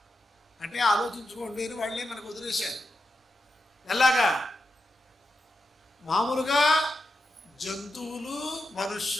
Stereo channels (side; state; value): both; normal; correlation 0.87